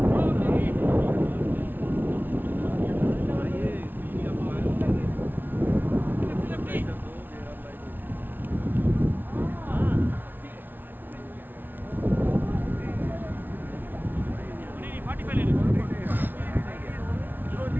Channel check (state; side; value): late; left; 0.091 ms